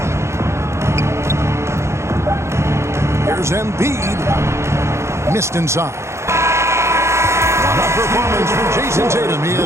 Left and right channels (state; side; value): late; left; 0.13 ms